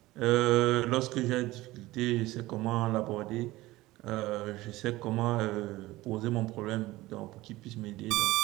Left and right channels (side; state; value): left; quieter; 18.4 dB